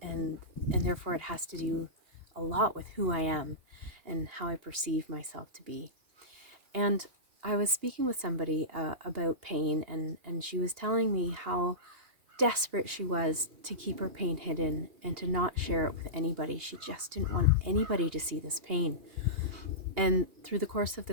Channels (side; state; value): left; late; 2.8 ms